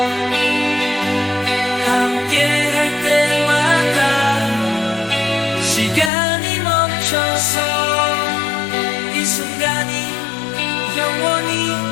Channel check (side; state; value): right; drops out; at 6.1 s